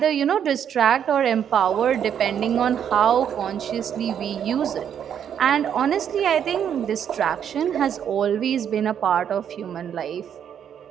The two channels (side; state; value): left; quieter; 8.8 dB